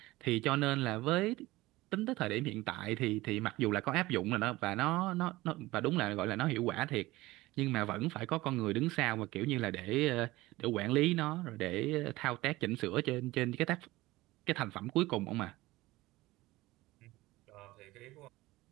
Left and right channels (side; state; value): left; quieter; 19.0 dB